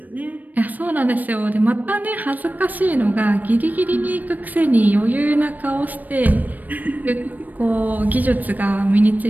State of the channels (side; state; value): left; late; 0.083 ms